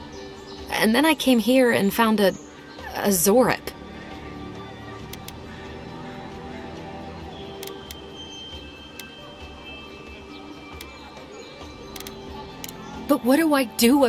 And then I came here and found a Zorip. But what do I do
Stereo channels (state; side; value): identical; both; correlation 1.00